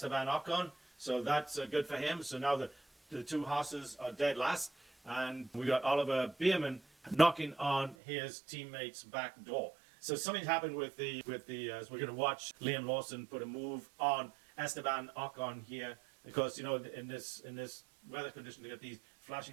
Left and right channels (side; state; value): left; drops out; at 8.0 s